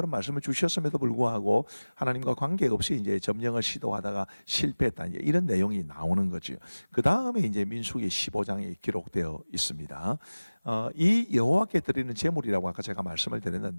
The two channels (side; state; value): both; inverted; correlation -1.00